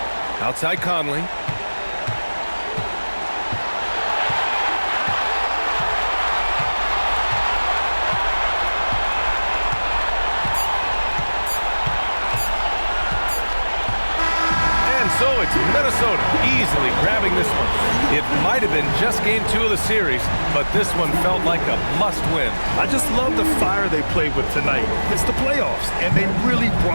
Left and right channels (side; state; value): both; inverted; correlation -1.00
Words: Outside Conley. So it's Minnesota easily grabbing this one. It might have been just game 2 of the series, but this one felt like a must-win. I just love the fire they played with tonight. It's the playoffs, and they really